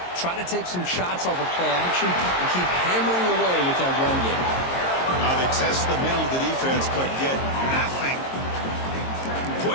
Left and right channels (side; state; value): right; late; 22 ms